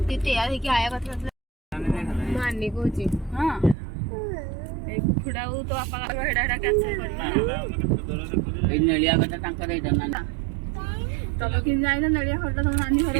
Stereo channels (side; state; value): left; drops out; at 3.8 s